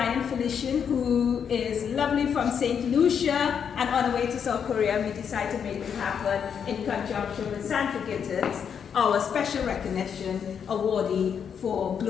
Felician, who is lovely from St. Lucia and on the way to South Korea. We decided to make it happen in conjunction with Sandra Gittins, our special recognition awardee for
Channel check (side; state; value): right; quieter; 7.4 dB